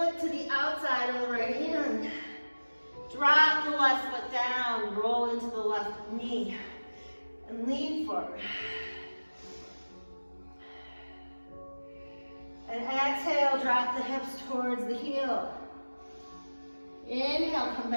to the outside of the right hand. Drop the left foot down. Roll into the left knee. And lean forward. And exhale, drop the hips towards the heel. Inhale, come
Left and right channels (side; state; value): both; inverted; correlation -1.00